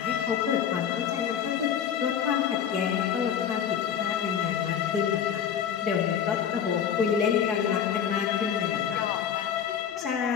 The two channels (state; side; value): quieter; right; 8.4 dB